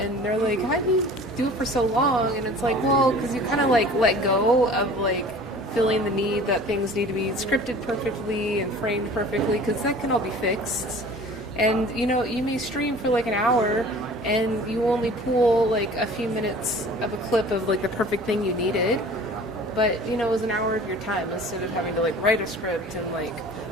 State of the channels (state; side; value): normal; both; correlation 0.45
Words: they're like, "How do you do it for so long?" And it's like, well, because you kind of like let go of like feeling the need that things need to be scripted perfectly and framed perfectly, because that can all be fixed. And you know, you may stream for like an hour, and you only pull like a few minutes of a clip of like the perfect thing you needed. But you know, it was an hour of your time instead of having to like write a script and like